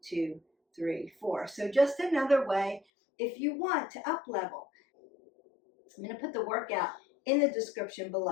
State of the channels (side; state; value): right; drops out; at 2.8 s